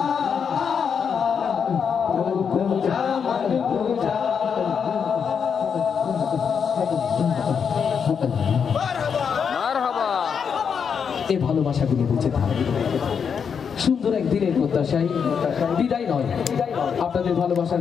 तू खुदा मन खुदा। এই ভালোবাসাগুলো বেঁচে থাকে সুন্দর একদিনের প্রত্যাশায়, বিদায় নয়। আপনাদের ভালোবাসার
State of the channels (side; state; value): right; quieter; 6.8 dB